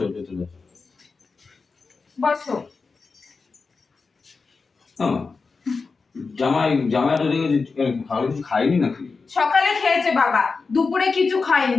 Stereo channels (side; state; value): right; quieter; 4.5 dB